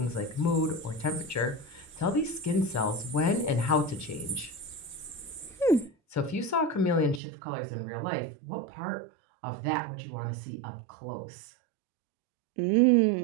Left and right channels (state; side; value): drops out; left; at 7.2 s